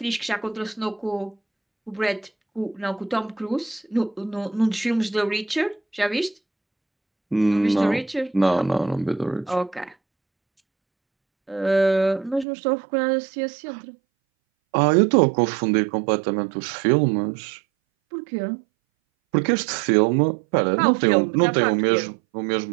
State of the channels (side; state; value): left; drops out; at 12.5 s